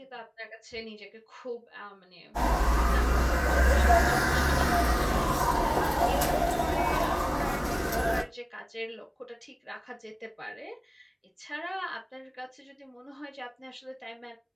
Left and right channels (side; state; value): both; identical; correlation 1.00